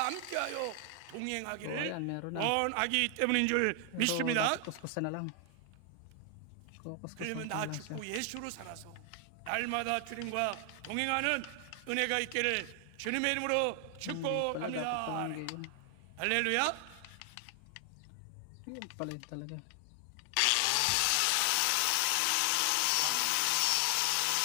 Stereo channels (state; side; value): different; both; correlation 0.00